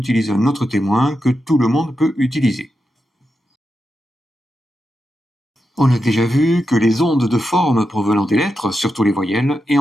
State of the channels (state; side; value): normal; both; correlation 0.88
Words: un autre témoin que tout le monde peut utiliser. On a déjà vu que les ondes de forme provenant des lettres, surtout les voyelles, et